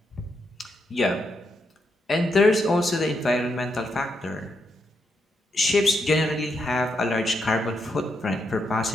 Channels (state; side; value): normal; both; correlation 0.81